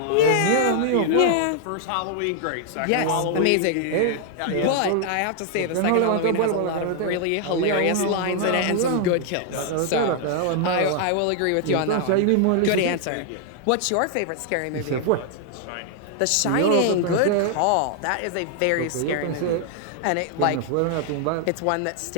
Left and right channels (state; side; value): different; both; correlation 0.00